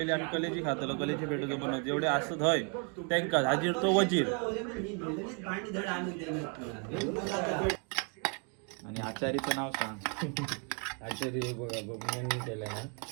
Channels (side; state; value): left; quieter; 38.2 dB